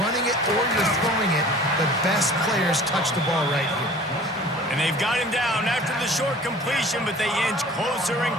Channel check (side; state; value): both; normal; correlation 0.46